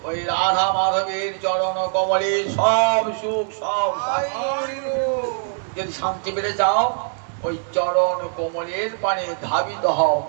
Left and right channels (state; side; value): silent; left; 64 dB below the other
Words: ওই রাধা মাধবের চরণ কমলে সব সুখ সব। যদি শান্তি পেতে চাও ওই চরণ কমলের পানে ধাবিত হও,